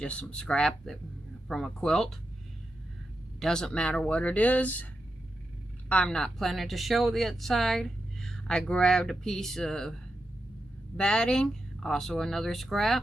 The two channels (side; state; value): both; normal; correlation 0.87